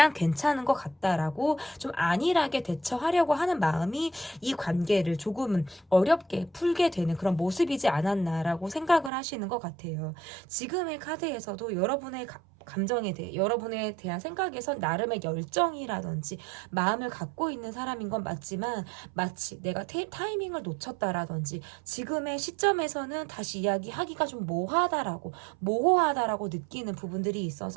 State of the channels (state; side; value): drops out; left; at 9.1 s